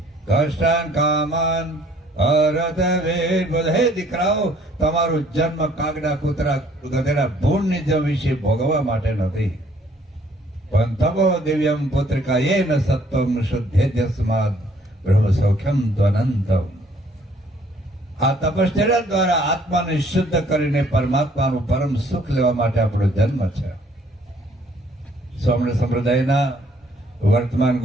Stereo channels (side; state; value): both; normal; correlation 0.61